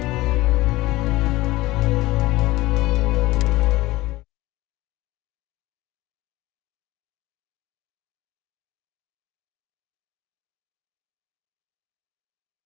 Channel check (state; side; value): quieter; right; 18.8 dB